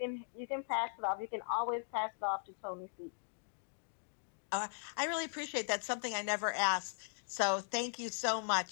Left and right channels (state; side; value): silent; right; digital silence